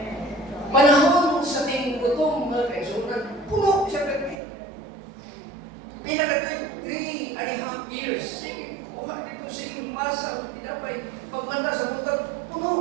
Panahon sa ting gutom mga kaigsunan, puno siya pagkita. Pinaka 3.5 years, sige, kuha dito, sige, masa, tinapay, pagmanda sa buntag,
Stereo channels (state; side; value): drops out; left; at 4.4 s